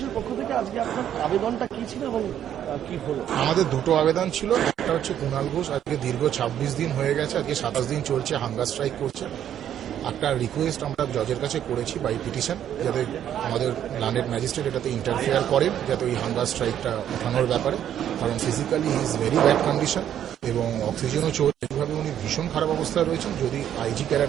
পক্ষ থেকে আজকে আপনার আবেদনটা কি ছিল এবং কি হলো? আমাদের দুটো আবেদন ছিল। একটা হচ্ছে কুণাল ঘোষ আজকে দীর্ঘ 26 দিন হয়ে গেছে, আজকে 27 দিন চলছে, হাঙ্গার স্ট্রাইক করছে। একটা রিকোয়েস্ট আমরা জজের কাছে করেছি বাই পিটিশন, যাতে আমাদের ল্যান্ডেড ম্যাজিস্ট্রেট এটাতে ইন্টারফেয়ার করেন, যাতে ওই হাঙ্গার স্ট্রাইকটা ওঠানোর ব্যাপারে। কারণ physically he is very bad condition এবং অক্সিজেনও চলছে, এইভাবে উনি ভীষণ খারাপ অবস্থায় রয়েছেন। যদি আইজি কেরা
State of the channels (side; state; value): left; quieter; 10.2 dB